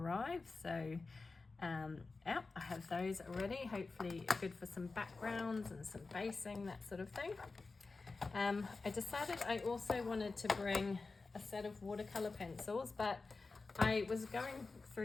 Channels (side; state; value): right; quieter; 3.9 dB